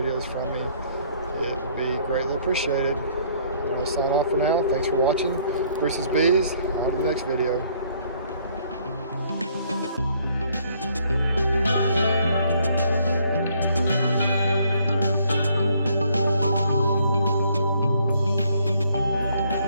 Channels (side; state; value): both; inverted; correlation -0.65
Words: from me. It would be greatly appreciated. I'm going to sign off for now. Thanks for watching. Bruce's Bees. On to the next video.